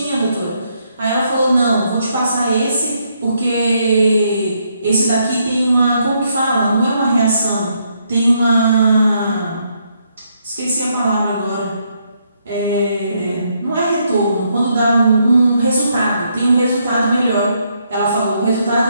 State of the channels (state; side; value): inverted; both; correlation -0.75